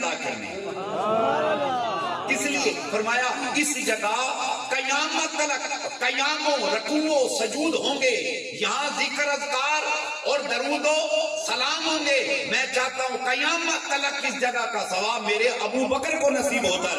کرنے، کس لیے؟ فرمایا اس جگہ قیامت تک قیاموں رکوع و سجود ہوں گے، یہاں ذکر اذکار اور درود و سلام ہوں گے، میں چاہتا ہوں قیامت تک اس جگہ کا ثواب میرے ابو بکر کو نصیب ہوتا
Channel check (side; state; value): both; identical; correlation 1.00